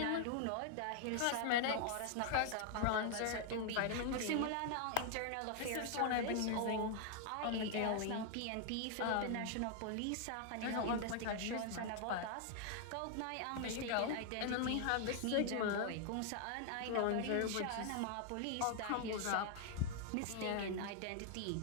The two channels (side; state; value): both; different; correlation 0.00